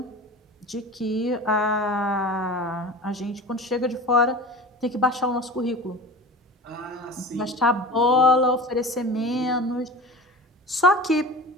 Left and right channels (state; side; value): normal; both; correlation 0.35